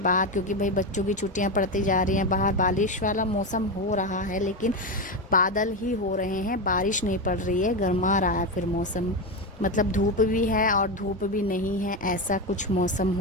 क्योंकि भाई बच्चों की छुट्टियाँ पड़ती जा रही हैं, बाहर बारिश वाला मौसम हो रहा है, लेकिन बादल ही हो रहे हैं, बारिश नहीं पड़ रही है। गर्मा रहा है फिर मौसम, मतलब धूप भी है और धूप भी नहीं है, ऐसा कुछ मौसम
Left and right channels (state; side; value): normal; both; correlation 0.14